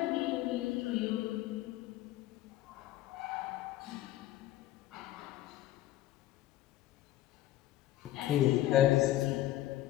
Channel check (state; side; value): quieter; right; 14.3 dB